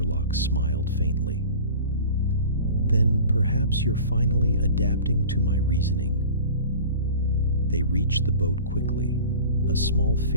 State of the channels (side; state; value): both; inverted; correlation -0.40